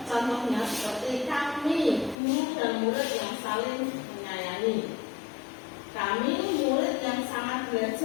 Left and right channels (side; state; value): right; drops out; at 2.1 s